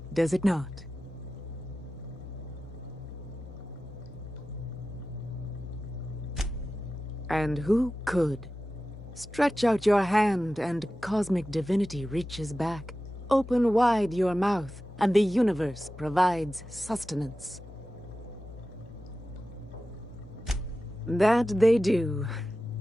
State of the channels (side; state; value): both; normal; correlation 0.94